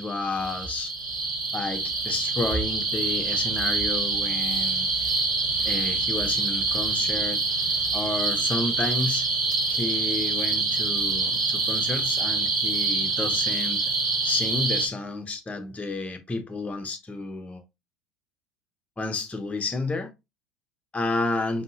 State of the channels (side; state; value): both; normal; correlation 0.41